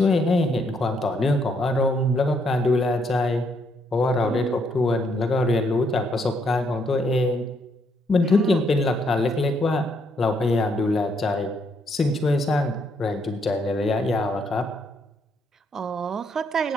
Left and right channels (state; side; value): normal; both; correlation 0.73